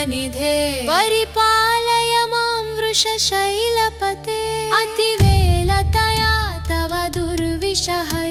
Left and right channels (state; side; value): identical; both; correlation 1.00